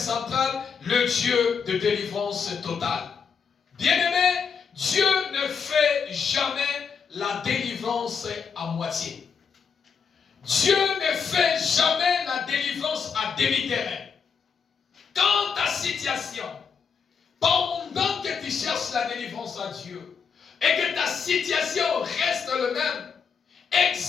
le Dieu de délivrance totale. Bien-aimé, Dieu ne fait jamais la délivrance à moitié. Dieu ne fait jamais la délivrance à demi-terrain. Quand ta situation, pendant que tu cherches la délivrance à Dieu, et que ta situation reste le même,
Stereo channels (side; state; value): right; quieter; 6.2 dB